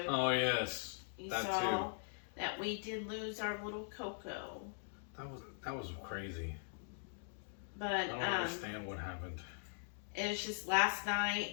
Oh, yes. You that saw too. that we did lose our little Coco. That was crazy. But I don't understand what happened. It was just last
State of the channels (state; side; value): silent; right; digital silence